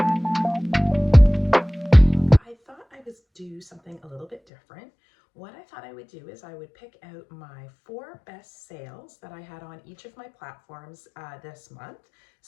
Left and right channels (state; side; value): drops out; right; at 4.4 s